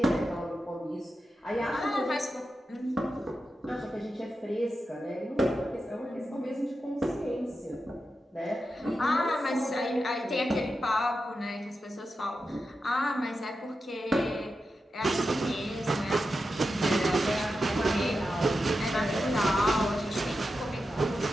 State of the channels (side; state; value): both; normal; correlation 0.90